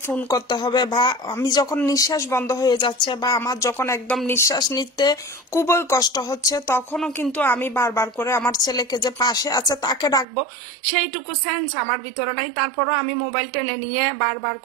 ফোন করতে হবে, বা আমি যখন নিঃশ্বাস বন্ধ হয়ে যাচ্ছে বা আমার যখন একদম নিঃশ্বাস নিতে খুবই কষ্ট হচ্ছে, তখনও কিন্তু আমি বারবার করে আমার ছেলেকে যে পাশে আছে তাকে ডাকবো, সেইটুকু সেন্স আমার ভিতরে নাই। তারপরও আমি মোবাইল টেনে নিয়ে বারবার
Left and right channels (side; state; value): left; drops out; at 10.2 s